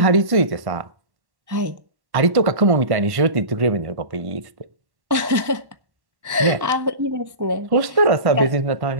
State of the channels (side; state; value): left; late; 1.1 ms